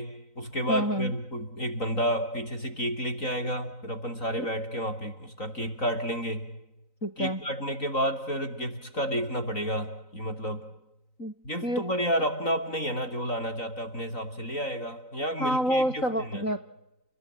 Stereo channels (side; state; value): right; late; 3.9 ms